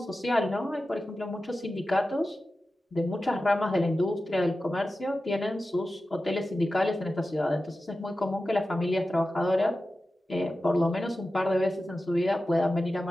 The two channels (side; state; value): both; normal; correlation 0.94